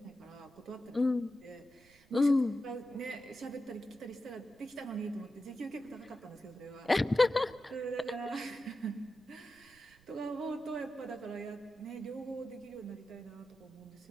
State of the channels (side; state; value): right; noise; rumble, 28 dB below the sound